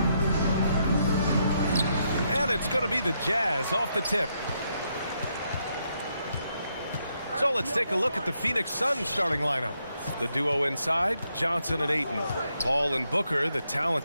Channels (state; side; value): inverted; both; correlation -0.78